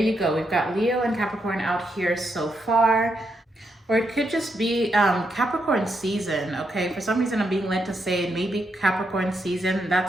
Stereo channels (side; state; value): both; normal; correlation 0.80